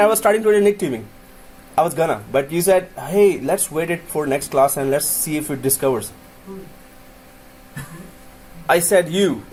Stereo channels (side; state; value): both; identical; correlation 1.00